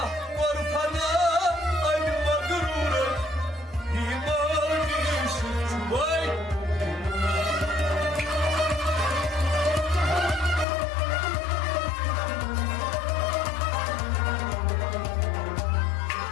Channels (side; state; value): right; drops out; at 10.7 s